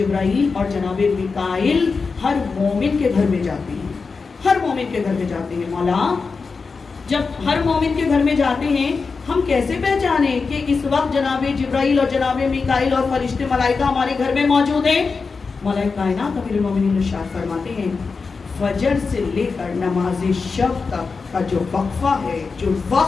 اور جناب میکائیل ہر مومن کے گھر میں جاتے ہیں. ہر مومن کے گھر میں جاتے ہیں. مولا جب ہر مومن کے گھر میں جاتے ہیں، ہم کیسے پہچانیں کہ اس وقت جناب جبرائیل اور جناب میکائیل اور فرشتے ملائکہ ہمارے گھر میں موجود ہیں؟ مولا کائنات امیر المومنین ارشاد فرماتے ہیں فجر سے لے کر نماز شب تک کا جو وقفہ ہے، جو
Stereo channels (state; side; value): quieter; right; 4.7 dB